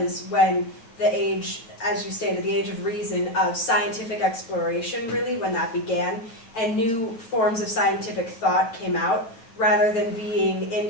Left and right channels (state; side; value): late; right; 9.0 ms